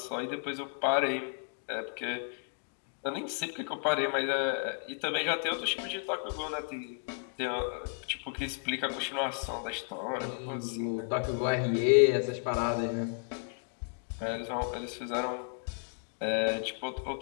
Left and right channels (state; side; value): silent; right; 55 dB below the other